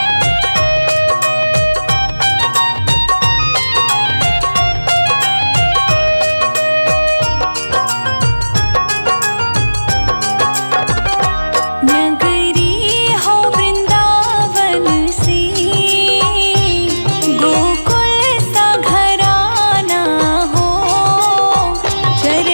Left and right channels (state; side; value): inverted; both; correlation -1.00